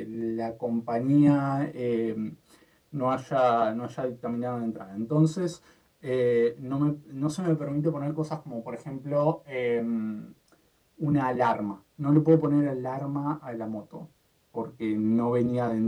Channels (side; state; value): both; identical; correlation 1.00